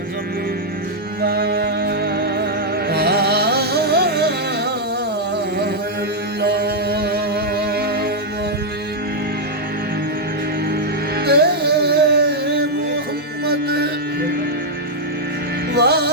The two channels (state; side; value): normal; both; correlation -0.03